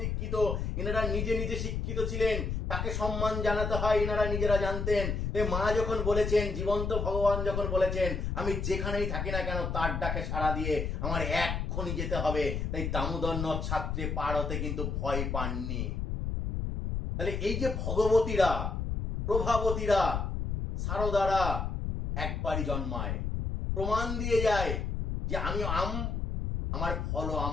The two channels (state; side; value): noise; left; rumble, 2 dB below the sound